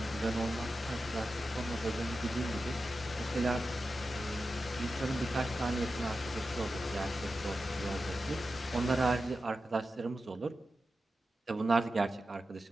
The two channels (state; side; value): normal; both; correlation 0.91